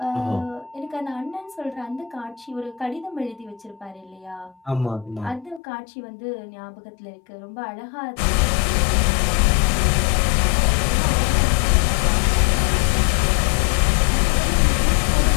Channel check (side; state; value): right; drops out; at 5.6 s